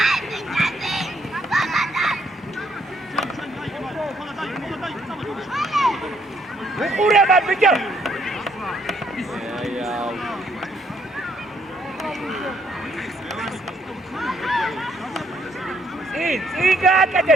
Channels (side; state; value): both; normal; correlation 0.70